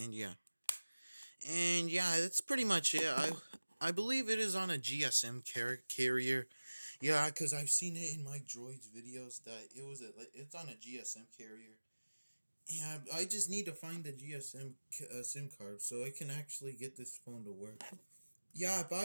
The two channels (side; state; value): both; inverted; correlation -1.00